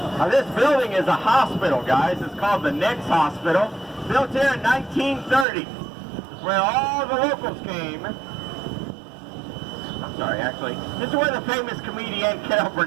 Now this building is a hospital, guys. It's called the Nix Hospital. Built here in 1930. It's where all the locals came. I'm sorry, actually. This is where the famous comedian Carol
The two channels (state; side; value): drops out; left; at 5.5 s